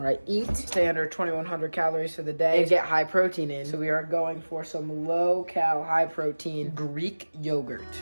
I eat. Stay under 2,100 calories for the day and get high protein in. So we are going for some low-cal, high-protein Greek yogurt.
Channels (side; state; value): both; inverted; correlation -1.00